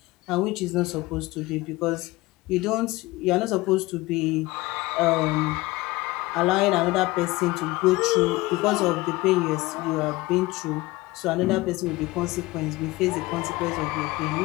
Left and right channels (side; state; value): right; quieter; 20.3 dB